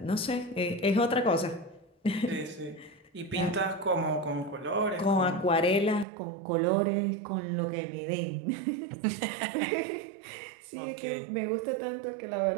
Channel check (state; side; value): drops out; left; at 6.1 s